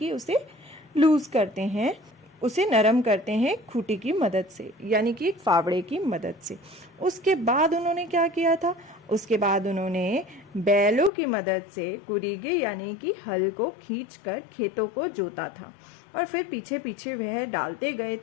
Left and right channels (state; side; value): drops out; right; at 11.1 s